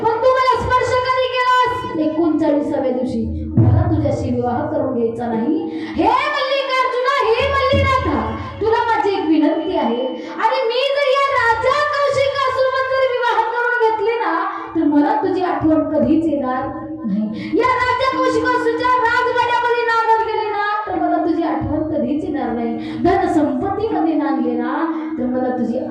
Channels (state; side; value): identical; both; correlation 1.00